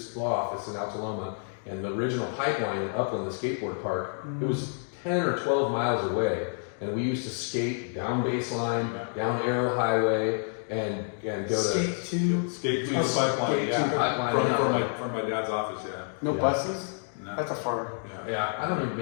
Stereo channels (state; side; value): silent; right; 59 dB below the other